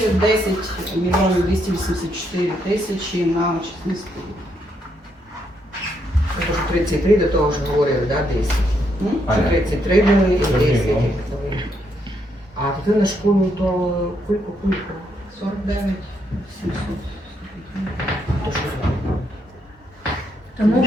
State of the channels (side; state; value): both; normal; correlation 0.76